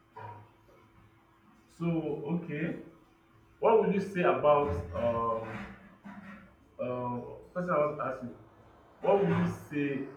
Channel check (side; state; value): both; identical; correlation 1.00